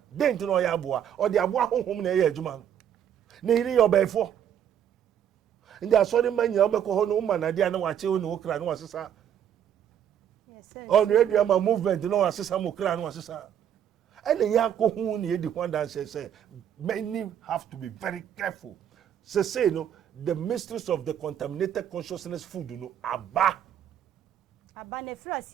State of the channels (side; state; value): left; quieter; 9.5 dB